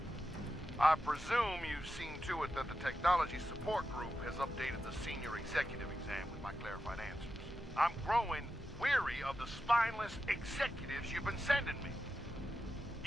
I presume you've seen to it that the Technology Support Group has updated the Senior Executive exam with my clarified answers. I'm growing weary of the spineless executives you've been sending me.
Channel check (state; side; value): normal; both; correlation 0.90